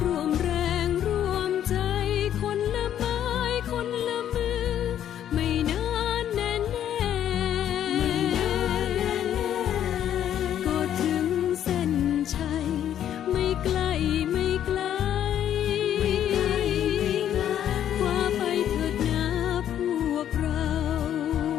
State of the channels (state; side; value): quieter; right; 10.5 dB